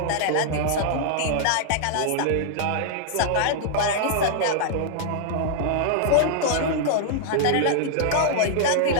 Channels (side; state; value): both; different; correlation -0.01